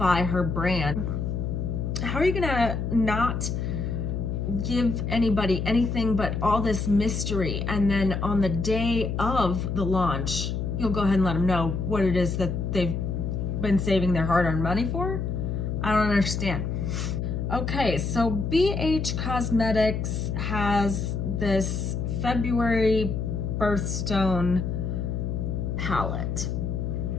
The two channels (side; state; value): left; noise; hum, 2 dB below the sound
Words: her brand. How are you gonna not give anybody anything but all this mystery, and then on the day of the launch you'll go ahead and let them know what it is that they've been saving their hard-earned money for? I don't understand. Okay, so BH Cosmetics has this February Birthstone palette.